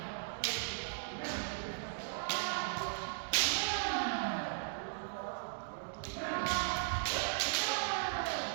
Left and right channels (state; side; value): silent; left; digital silence